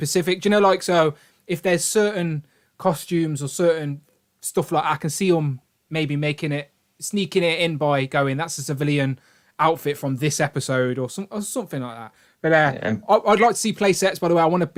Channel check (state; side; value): identical; both; correlation 1.00